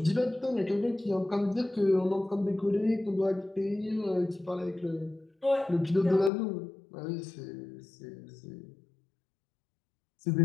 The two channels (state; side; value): drops out; right; at 6.3 s